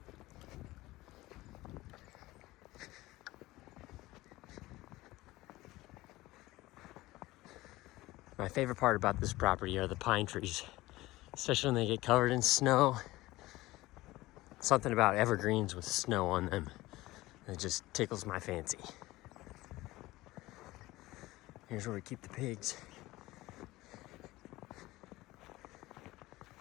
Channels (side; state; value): right; quieter; 18.6 dB